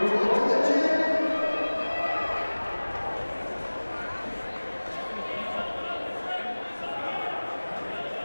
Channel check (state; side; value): inverted; both; correlation -1.00